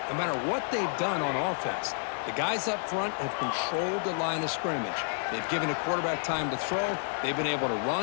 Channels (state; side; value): silent; right; 58 dB below the other